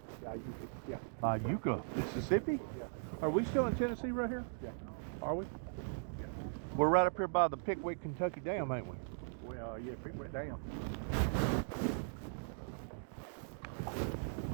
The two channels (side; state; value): left; silent; digital silence